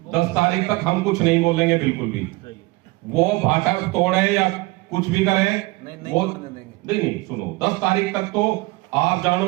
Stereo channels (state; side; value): quieter; left; 22.6 dB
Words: 10 तारीख तक हम कुछ नहीं बोलेंगे बिल्कुल भी। वो भाटा तोड़े या कुछ भी करे, वो नहीं सुनो, 10 तारीख तक तो आप